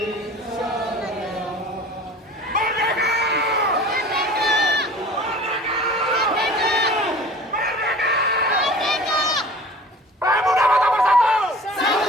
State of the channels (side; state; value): both; normal; correlation 0.42